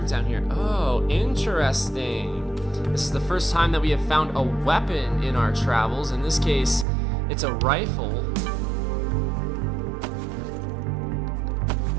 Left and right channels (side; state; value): left; drops out; at 6.9 s